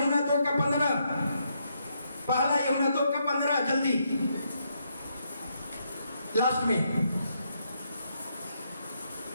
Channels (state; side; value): inverted; both; correlation -0.77